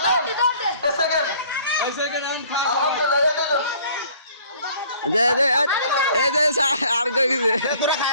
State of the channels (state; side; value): inverted; both; correlation -0.54